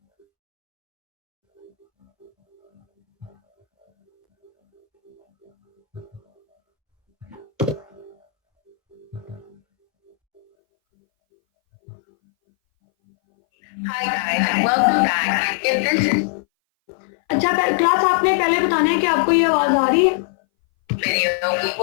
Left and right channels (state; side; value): drops out; right; at 10.4 s